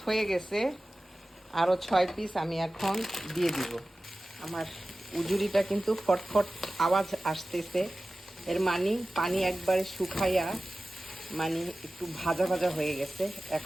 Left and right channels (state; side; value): normal; both; correlation 0.96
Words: হয়ে গেছে, আরও 6 পিস আমি এখন দিয়ে দিব। আমার উজুরিটা কিন্তু ফটফট আওয়াজ আসতেছে, এর মানে পানি একবারে শুকাইয়া মানে একটু ভাজা ভাজা হয়ে গেছে।